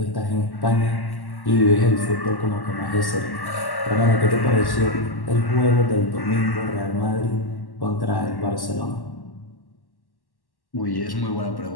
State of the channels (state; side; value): late; right; 1.1 ms